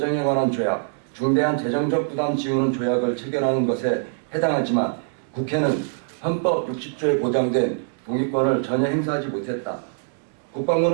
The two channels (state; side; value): silent; left; digital silence